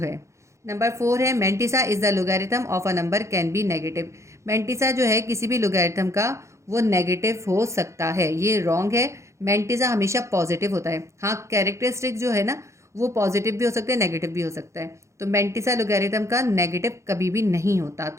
नंबर 4 है mantissa is the logarithm of a number can be negative. Mantissa जो है किसी भी लोगैरिथम का वो नेगेटिव हो सकता है, ये रॉन्ग है। मेंटिसा हमेशा पॉजिटिव होता है। हाँ, कैरेक्टरिस्टिक जो है ना वो पॉजिटिव भी हो सकता है, नेगेटिव भी हो सकता है, तो मेंटिसा लोगैरिथम का नेगेटिव कभी भी नहीं होता,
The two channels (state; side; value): late; left; 0.14 ms